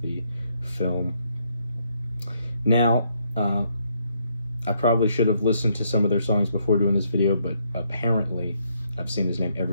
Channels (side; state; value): both; inverted; correlation -0.73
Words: the film. Now, I probably should have listened to some of their songs before doing this video, but apparently I've seen his name